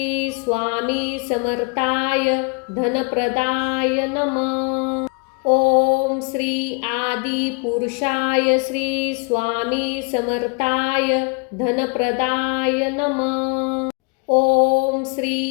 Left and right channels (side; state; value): right; quieter; 32.8 dB